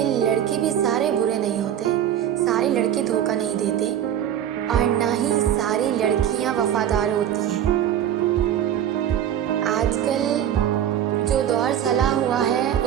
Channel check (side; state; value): left; quieter; 10.4 dB